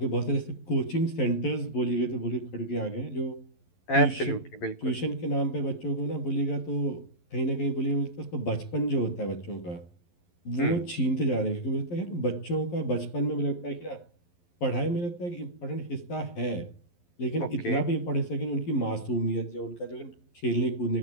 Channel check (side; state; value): right; late; 11 ms